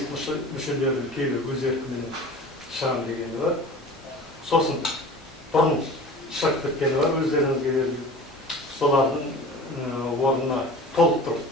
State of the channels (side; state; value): both; normal; correlation 0.39